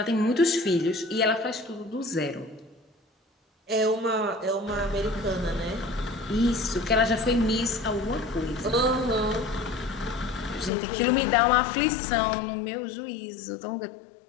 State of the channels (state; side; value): drops out; right; at 10.7 s